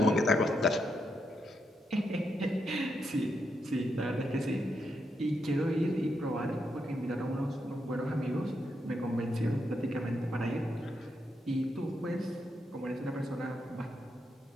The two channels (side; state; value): both; normal; correlation 0.81